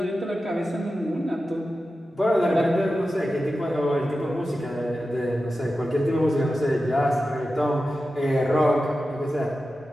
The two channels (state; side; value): normal; both; correlation 0.92